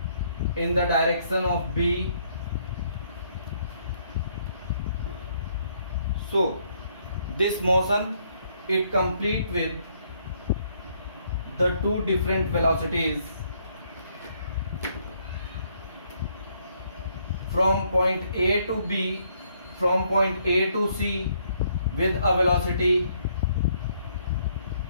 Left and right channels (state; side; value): inverted; both; correlation -0.69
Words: in the direction of B. So this motion, it complete with the two different velocities from point A to B, from point A to C with a velocity